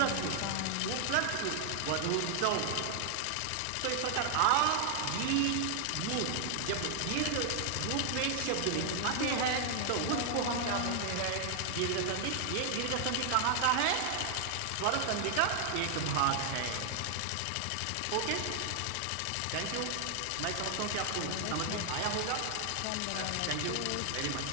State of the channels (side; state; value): both; different; correlation 0.00